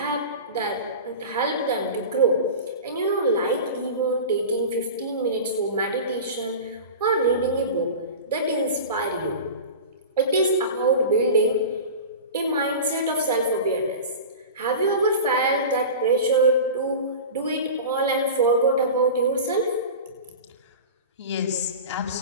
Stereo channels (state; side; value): inverted; both; correlation -0.32